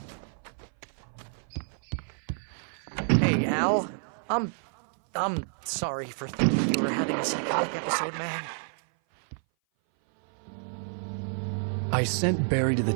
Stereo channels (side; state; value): left; silent; 57 dB below the other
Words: Hey, Al. I'm sorry for thinking you were having a psychotic episode, man. I sent Barry to the